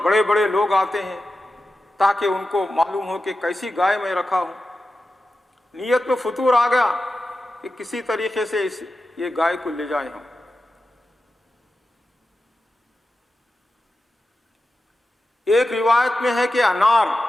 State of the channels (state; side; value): normal; both; correlation 0.92